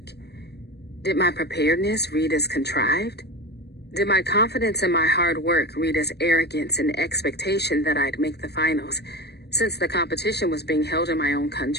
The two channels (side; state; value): right; late; 0.48 ms